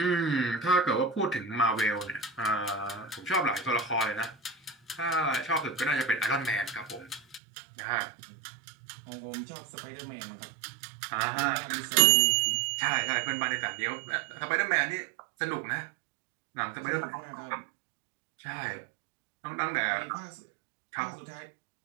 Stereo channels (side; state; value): left; drops out; at 7.4 s